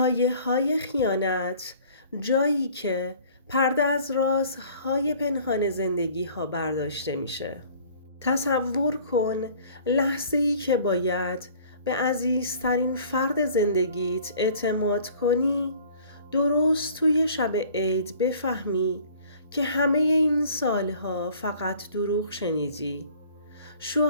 خیانت، جایی که پرده از رازهای پنهان زندگی‌ها برداشته میشه. تصور کن لحظه‌ای که باید به عزیزترین فرد زندگیت اعتماد کنی، درست توی شب عید بفهمی که همه این سالها فقط دروغ شنیدی.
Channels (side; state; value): both; inverted; correlation -0.51